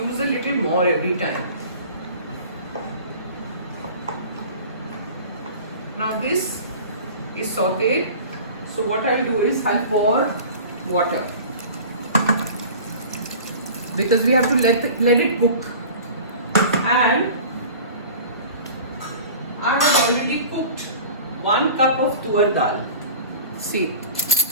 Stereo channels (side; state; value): both; inverted; correlation -0.40